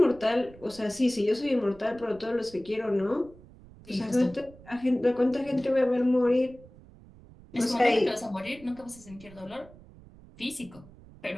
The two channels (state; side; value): noise; right; rumble, 22 dB below the sound